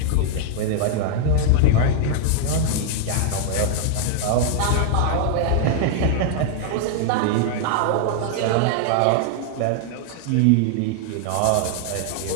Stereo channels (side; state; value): both; different; correlation 0.00